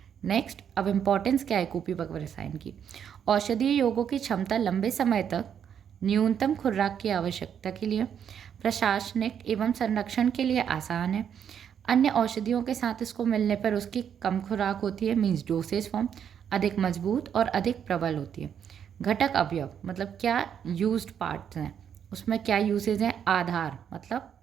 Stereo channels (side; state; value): left; quieter; 8.4 dB